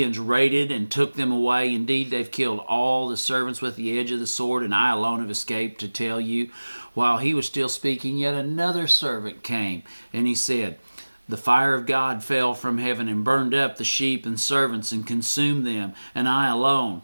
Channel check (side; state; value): both; inverted; correlation -1.00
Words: raided and took them away. Indeed, they've killed all the servants with the edge of the sword, and I alone have escaped to tell you. While he was still speaking, yet another servant came, and he said, the fire of God fell from heaven and burned up the sheep and servants and consumed them, and I alone